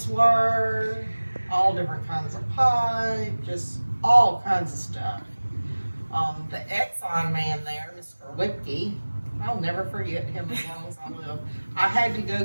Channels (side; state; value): both; inverted; correlation -1.00